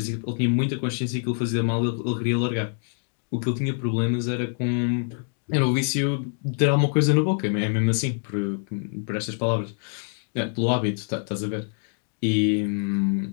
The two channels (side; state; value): right; silent; 60 dB below the other